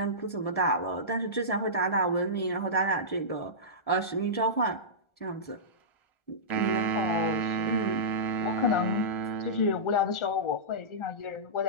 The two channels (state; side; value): late; right; 1.4 ms